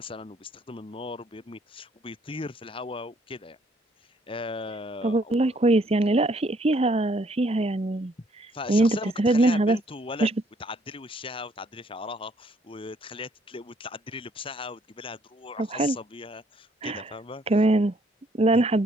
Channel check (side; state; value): both; normal; correlation 0.65